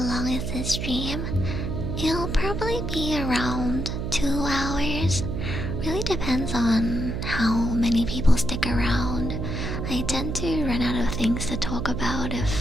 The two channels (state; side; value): noise; right; hum, 3 dB below the sound